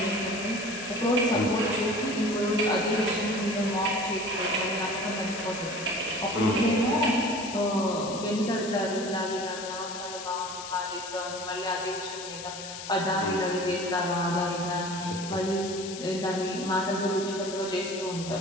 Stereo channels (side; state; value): left; noise; hiss, 10 dB below the sound